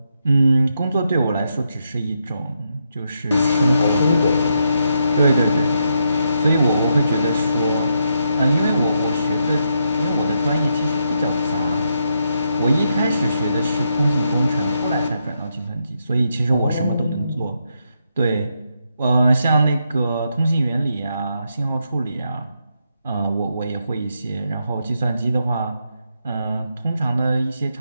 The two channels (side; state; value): both; inverted; correlation -0.80